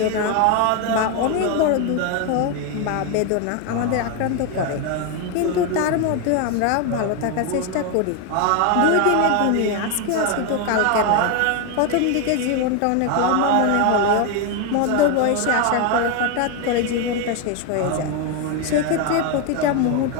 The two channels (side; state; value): both; different; correlation 0.01